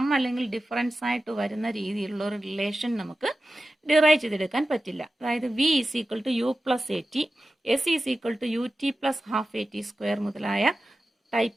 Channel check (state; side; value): normal; both; correlation 0.94